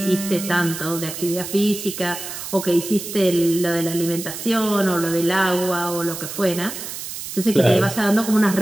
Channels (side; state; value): right; noise; hiss, 8 dB below the sound